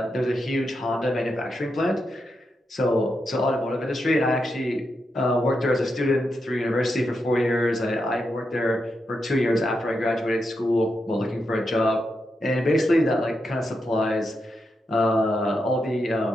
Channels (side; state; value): both; normal; correlation 0.85